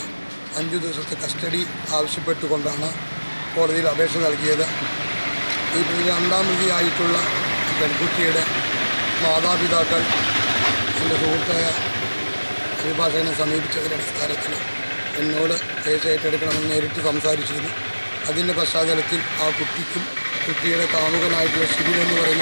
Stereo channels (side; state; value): both; inverted; correlation -1.00